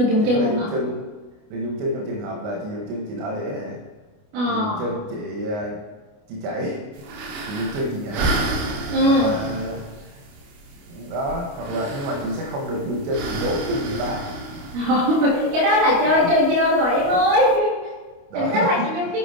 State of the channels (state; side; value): late; left; 29 ms